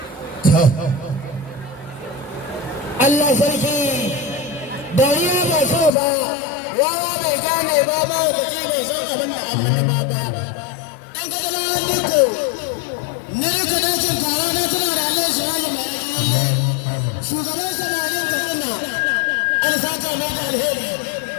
Allah sarki dariya ba so ba wawa bai gane ba mahaukaci bai san abin da Allah da baba dan kaga na diko ni duka dakin kara na tana da Allah shi hali mai rajin shugaban samarin kaduna an saka mai da alheri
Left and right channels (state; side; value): drops out; right; at 5.9 s